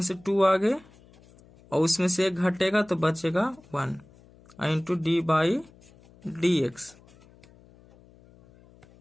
से 2 आगे और उसमें से एक घटेगा तो बचेगा 1 into D by D X.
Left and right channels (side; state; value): left; noise; hum, 26 dB below the sound